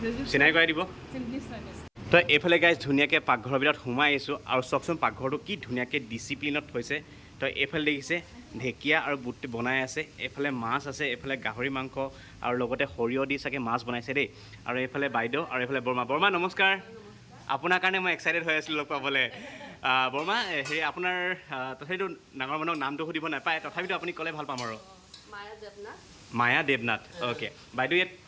চিনাই কৰাই দিব। তো এইফালে গাইজ ধুনীয়াকৈ পাকঘৰৰ ভিতৰত সোমাই আহিছোঁ, আৰু চাওকচোন পাকঘৰটো কি ধুনীয়াকৈ ডিচিপ্লিনত থৈছে। তো এইফালে দেখিছে ঢেকীয়া আৰু বুট বনাই আছে, এইফালে মাছ আছে, এইফালে গাহৰি মাংস, আৰু লগতে সৰিয়হ দি চাগে মাছ বনাইছে দেই। আৰু এইফালে বাইদেউ, আৰু এইফালে বৰ্মা। বৰ্মা নমস্কাৰ, আপোনাৰ কাৰণে মই এক্সাইটেড হৈ আছিলোঁ লগ পাবলৈ। বৰ্মা, হেৰি আপোনাৰ তথাপিতো ডাঙৰ মানুহক নামটো সুধিব নাপায়, তথাপিতো আপুনি ক'লে ভাল পাম আৰু। মায়া দেৱনাথ। অ'কে, বাইদেউ ইয়াত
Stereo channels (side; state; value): both; identical; correlation 1.00